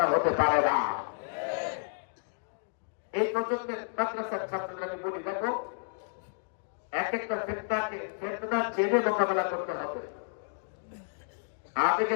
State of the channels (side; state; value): right; silent; digital silence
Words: হতে পারে না। এই প্রজন্মের মাদ্রাসার ছাত্রদের আমি বলি, দেখো, এক একটা ফেতনার জেনে মোকাবেলা করতে হবে।